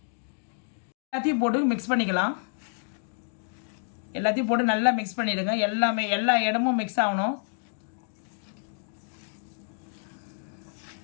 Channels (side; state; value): right; silent; digital silence